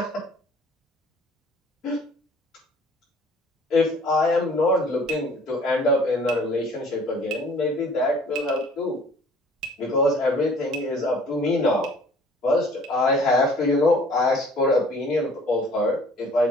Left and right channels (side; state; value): both; normal; correlation 0.53